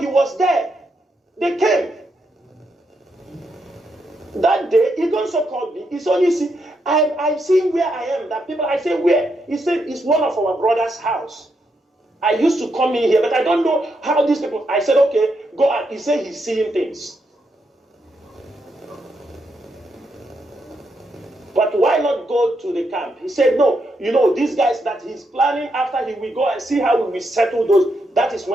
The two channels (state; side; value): normal; both; correlation 0.80